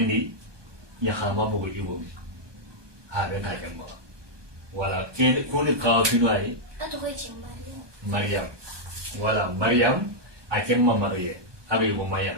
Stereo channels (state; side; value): late; left; 1.2 ms